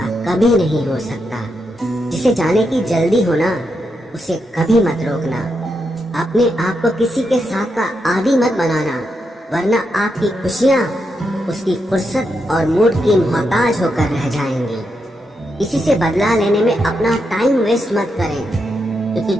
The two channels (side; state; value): both; normal; correlation 0.83